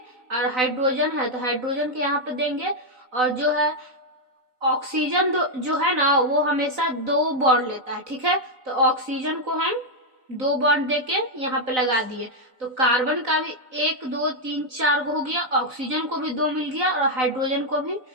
और हाइड्रोजन है तो हाइड्रोजन के यहाँ पे देंगे। और जो है ऑक्सीजन जो है ना, वो हमेशा 2 बॉन्ड लेता है, ठीक है। तो ऑक्सीजन को हम 2 बॉन्ड देके यहाँ पे लगा दिए। तो कार्बन का भी 1 2 3 4 हो गया, ऑक्सीजन को भी 2 मिल गया और हाइड्रोजन को भी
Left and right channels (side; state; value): left; late; 4.0 ms